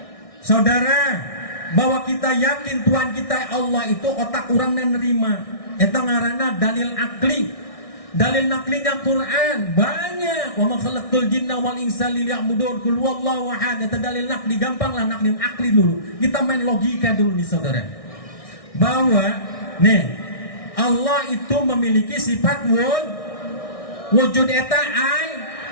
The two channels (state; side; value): late; right; 1.6 ms